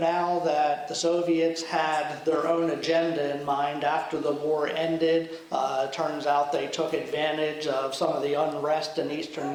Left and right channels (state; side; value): identical; both; correlation 1.00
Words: that the Soviets had their own agenda in mind after the war ended. It turns out they took advantage of some of the unrest in